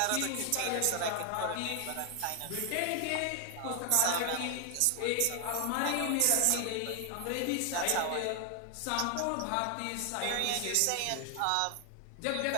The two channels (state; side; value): different; both; correlation 0.00